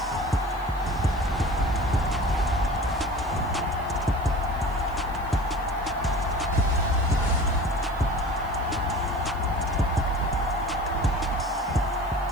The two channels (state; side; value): noise; left; hiss, 26 dB below the sound